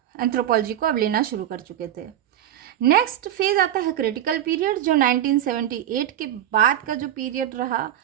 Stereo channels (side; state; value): left; quieter; 11.5 dB